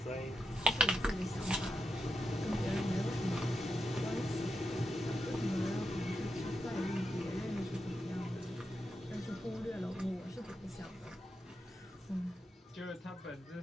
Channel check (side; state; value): both; normal; correlation 0.86